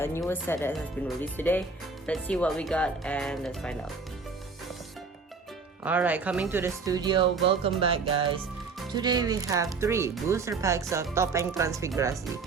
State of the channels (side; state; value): left; quieter; 4.5 dB